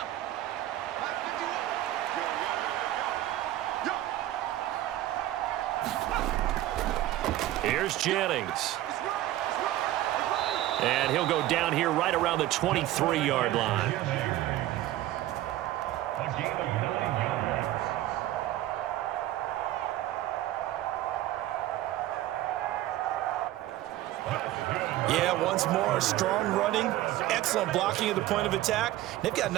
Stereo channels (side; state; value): left; quieter; 14.6 dB